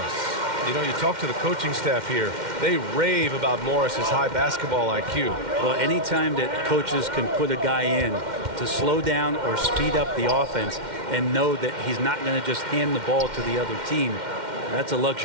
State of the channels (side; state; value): left; late; 2.1 ms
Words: You know, you talk to the coaching staff here. They rave about Morris's high basketball IQ. Well, anytime that coaches can put a guy in to slow down or speed up the offense and know that he's not going to just hand the ball to the other team, that's a